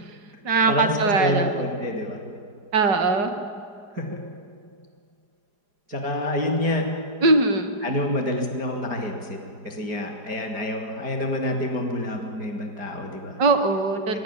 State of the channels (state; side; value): late; left; 4.9 ms